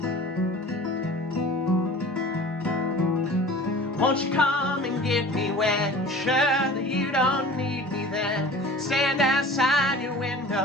Won't you come and get me when you're sure that you don't need me then? Stand outside your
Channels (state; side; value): normal; both; correlation 0.42